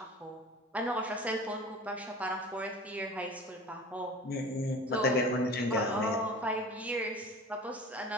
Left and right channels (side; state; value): both; normal; correlation 0.39